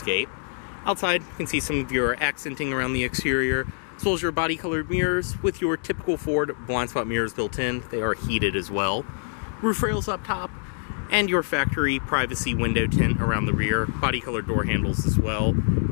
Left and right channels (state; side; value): silent; right; digital silence